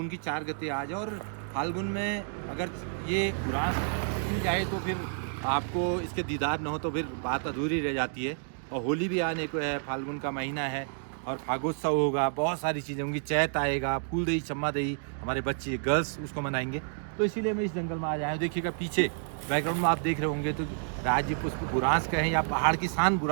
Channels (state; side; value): silent; left; digital silence